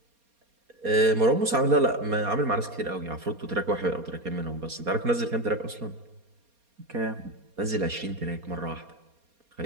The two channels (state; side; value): late; left; 4.3 ms